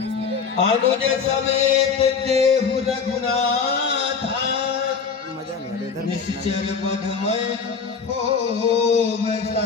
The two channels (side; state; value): right; quieter; 5.7 dB